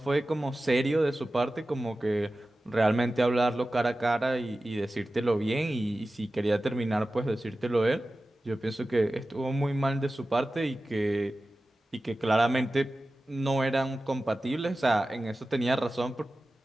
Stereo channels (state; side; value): normal; both; correlation 0.95